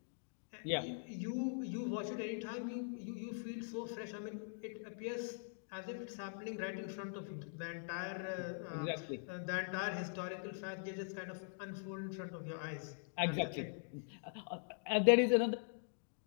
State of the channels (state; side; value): silent; right; digital silence